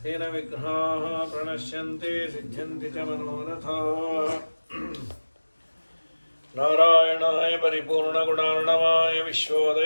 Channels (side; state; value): both; inverted; correlation -1.00